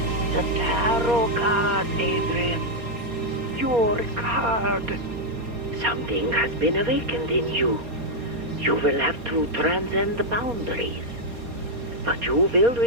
tarot card, Adrian. Your card. Something has been awakened in you. You will have to transcend the boundaries. But you will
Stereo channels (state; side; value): late; left; 4.2 ms